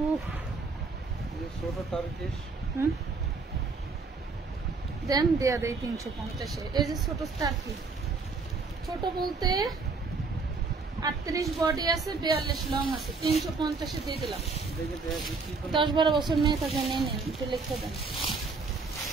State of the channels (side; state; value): left; quieter; 4.3 dB